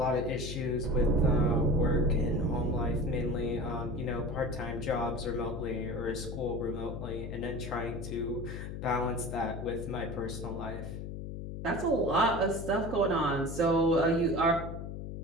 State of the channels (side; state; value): left; noise; hum, 7 dB below the sound